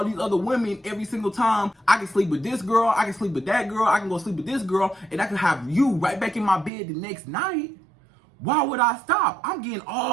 these other women every single time, I can sleep with this girl, I can sleep with that girl, I can go sleep with this girl, and I can have you right back in my bed the next night. Why would I stop? I'm getting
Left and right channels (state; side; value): drops out; left; at 6.7 s